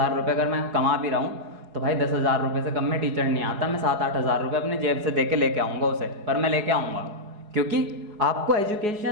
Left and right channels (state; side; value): late; left; 4.8 ms